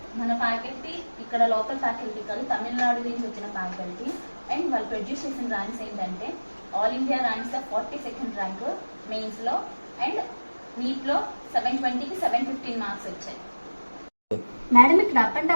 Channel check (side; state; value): both; inverted; correlation -1.00